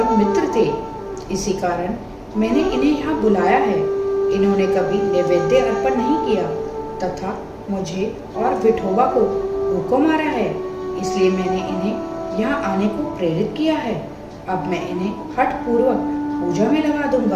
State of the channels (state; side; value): identical; both; correlation 1.00